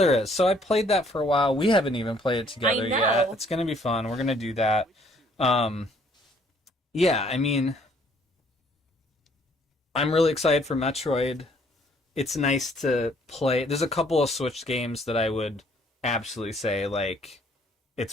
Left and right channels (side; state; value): both; normal; correlation 0.63